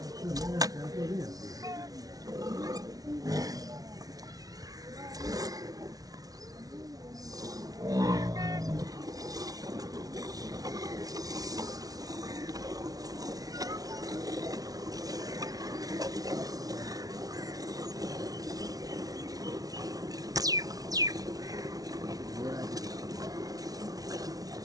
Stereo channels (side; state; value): left; late; 0.18 ms